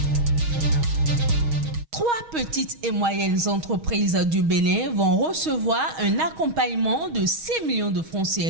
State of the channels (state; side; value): late; left; 6.3 ms